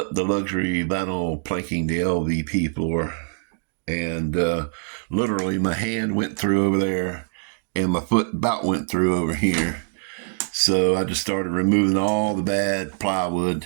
the luxury vinyl planking, the LVP floor, and literally my hand went through over there and my foot about went through over here. So I just started removing all the bad plywood,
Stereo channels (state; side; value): silent; left; digital silence